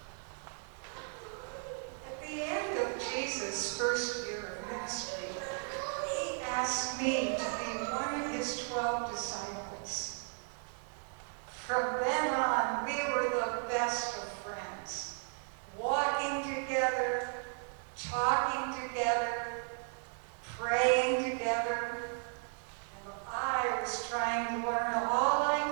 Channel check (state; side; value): silent; left; 54 dB below the other